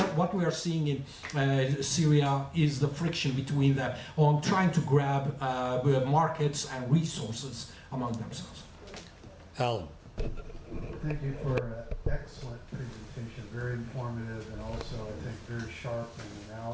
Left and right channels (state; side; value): identical; both; correlation 1.00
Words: we are seeing in Syria is the friction between them on trying to grab markets and resources among themselves. Alan. Thank you for an excellent presentation, very informative and also, I think, very sharp in